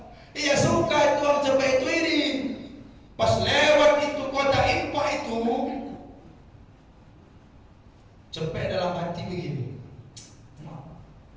Iya suka itu orang cepet itu iri. Pas lewat itu kota Impa itu, cepet dalam hati begini.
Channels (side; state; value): both; identical; correlation 1.00